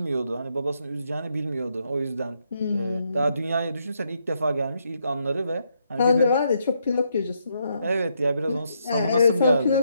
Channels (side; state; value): both; inverted; correlation -0.77